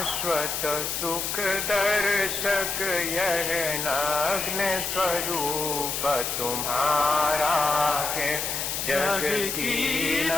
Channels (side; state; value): left; noise; hiss, 2 dB below the sound